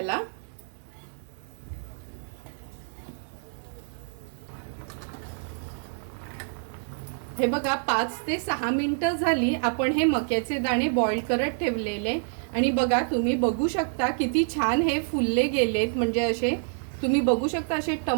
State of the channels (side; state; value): left; silent; digital silence